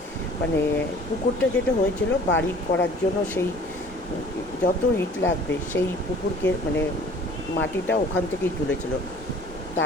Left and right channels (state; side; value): normal; both; correlation 0.49